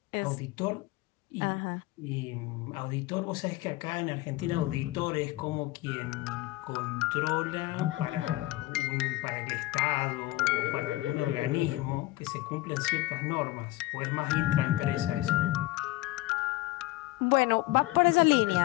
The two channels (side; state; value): right; quieter; 18.3 dB